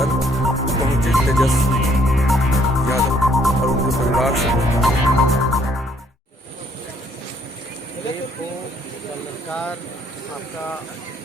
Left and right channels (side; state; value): both; normal; correlation 0.65